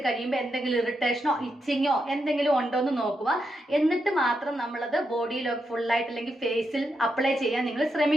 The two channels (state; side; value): normal; both; correlation 0.84